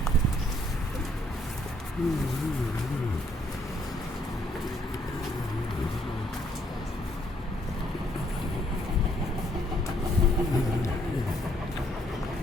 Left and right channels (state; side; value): normal; both; correlation 0.68